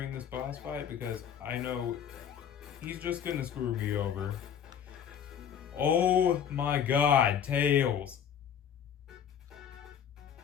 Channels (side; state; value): right; quieter; 8.5 dB